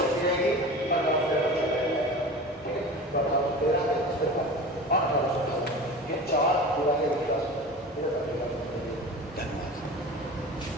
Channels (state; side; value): normal; both; correlation 0.34